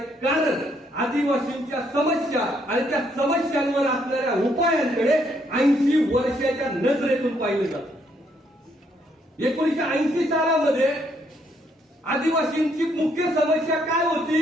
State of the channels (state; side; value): normal; both; correlation 0.71